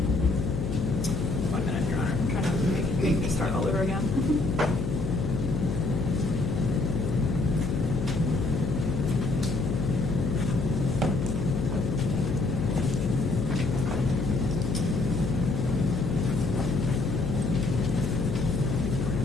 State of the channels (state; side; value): noise; left; hum, 3 dB below the sound